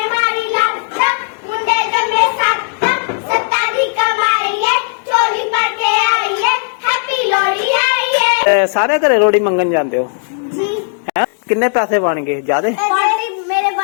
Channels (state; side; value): silent; right; digital silence